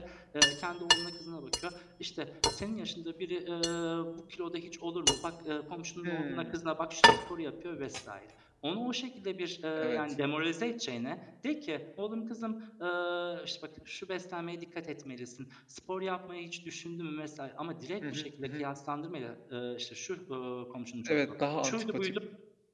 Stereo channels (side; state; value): both; identical; correlation 1.00